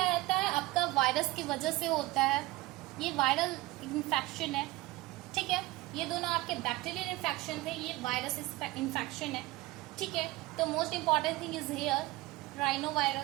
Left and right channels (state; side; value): quieter; left; 19.7 dB